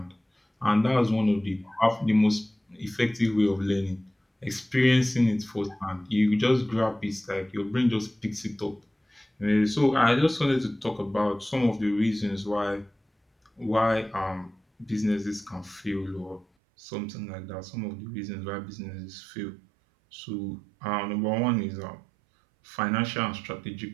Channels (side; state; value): left; drops out; at 16.4 s